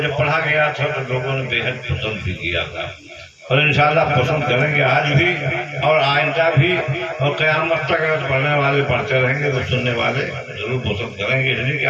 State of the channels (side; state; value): both; identical; correlation 1.00